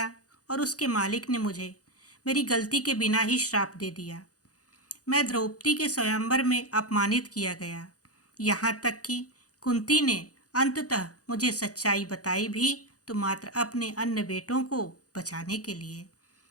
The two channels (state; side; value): late; right; 0.67 ms